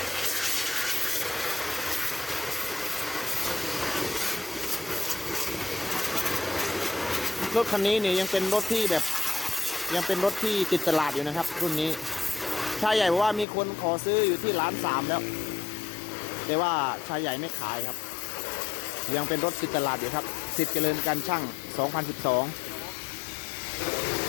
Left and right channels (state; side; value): drops out; right; at 13.5 s